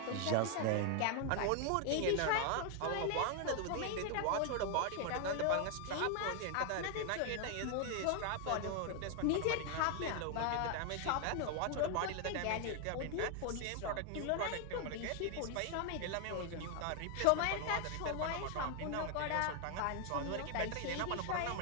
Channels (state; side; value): different; both; correlation 0.00